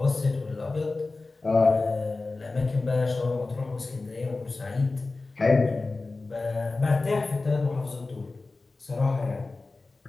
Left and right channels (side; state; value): right; quieter; 3.5 dB